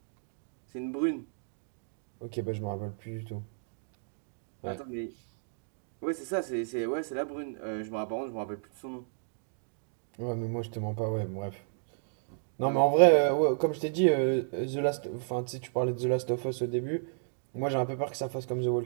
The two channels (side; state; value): left; silent; digital silence